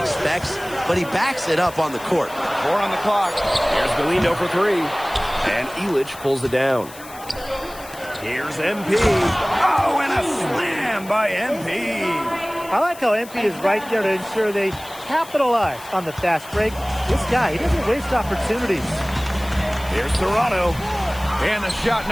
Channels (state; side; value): noise; left; hiss, 18 dB below the sound